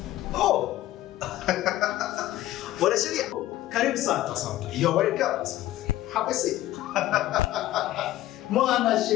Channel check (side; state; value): right; quieter; 14.9 dB